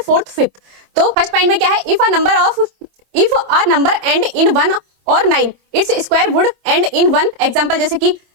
fourth, fifth. तो फर्स्ट पॉइंट में क्या है, if a number and in 1 और 9, it's square would and in 1। Example जैसे कि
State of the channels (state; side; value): late; left; 26 ms